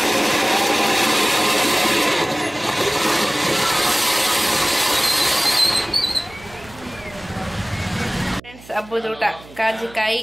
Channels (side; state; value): right; noise; hum, 21 dB below the sound